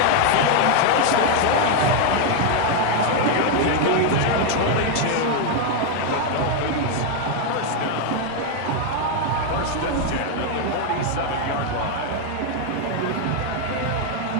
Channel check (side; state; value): both; different; correlation 0.01